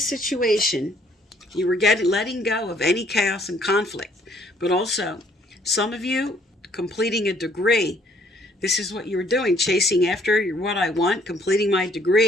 situation. You were letting go of any chaos and conflict. But also, some of you completing a degree. This is what you were doing, chasing after what I want, completing my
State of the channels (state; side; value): normal; both; correlation 0.63